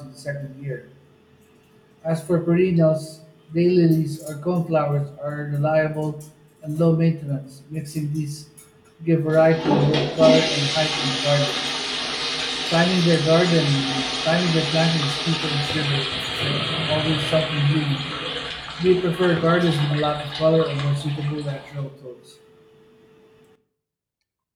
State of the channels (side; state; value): both; identical; correlation 1.00